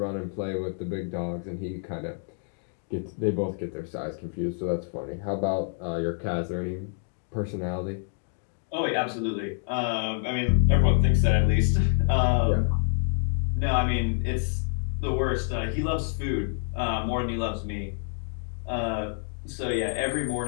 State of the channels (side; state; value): right; silent; 60 dB below the other